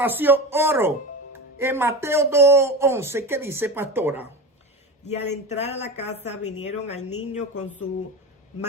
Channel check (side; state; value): both; normal; correlation 0.25